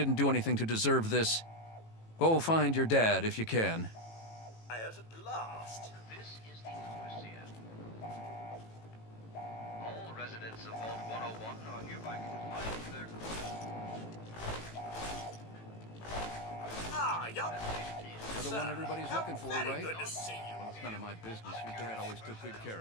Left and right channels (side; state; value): right; late; 18 ms